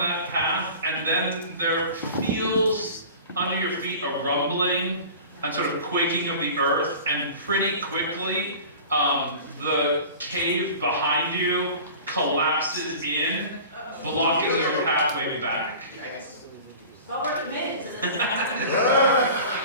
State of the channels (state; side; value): inverted; both; correlation -0.39